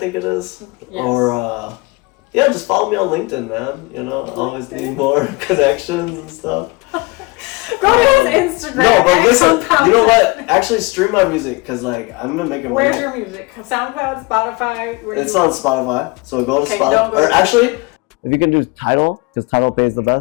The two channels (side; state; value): right; quieter; 25.3 dB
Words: it is. Yes. Or yeah, just follow me on LinkedIn, man. You know, I always need more connections and stuff. Go to his Instagram. No, but listen, you know 10. what? Actually, stream my music because like I'm gonna make it. Where's your music? SoundCloud, Spotify. It's on Spotify, so go to Spotify. Or actually, if you can do Tidal, because Tidal pays the